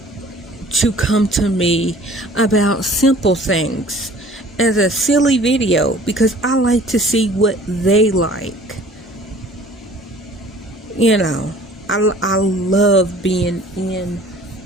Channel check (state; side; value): normal; both; correlation 0.50